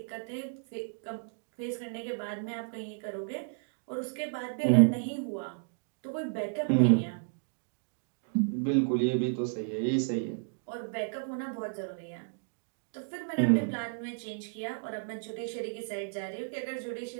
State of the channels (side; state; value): left; silent; digital silence